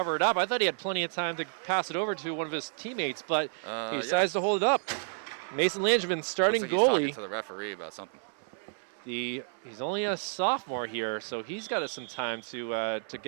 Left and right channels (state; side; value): silent; left; 57 dB below the other